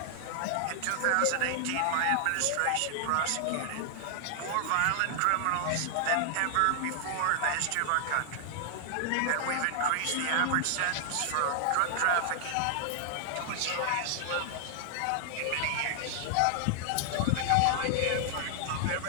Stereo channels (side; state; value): both; different; correlation 0.00